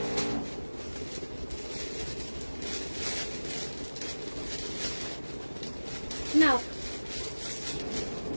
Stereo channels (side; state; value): both; inverted; correlation -1.00